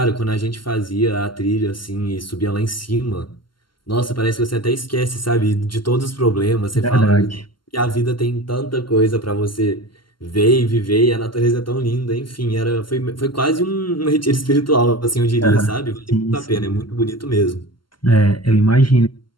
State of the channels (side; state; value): right; late; 0.72 ms